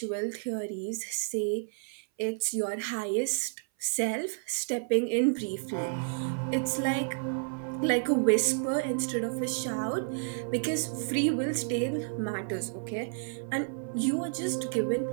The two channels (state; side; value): silent; left; 57 dB below the other